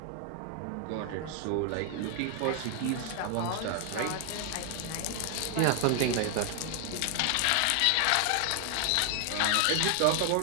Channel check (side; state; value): both; different; correlation 0.00